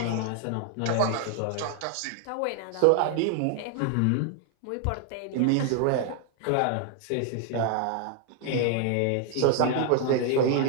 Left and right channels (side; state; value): both; different; correlation 0.00